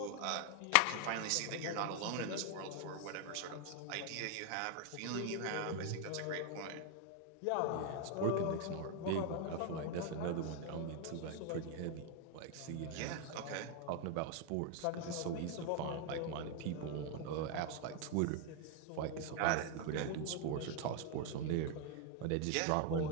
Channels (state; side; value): different; both; correlation 0.00